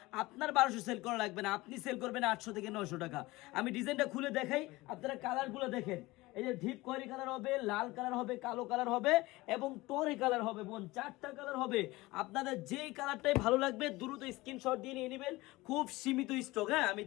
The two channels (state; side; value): quieter; right; 20.4 dB